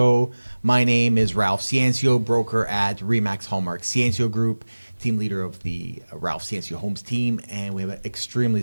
My name is Ralph Ciancio, broker at Remax Hallmark Ciancio Group, team leader of the Ralph Ciancio Homes team, and we have an extremely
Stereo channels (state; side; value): inverted; both; correlation -1.00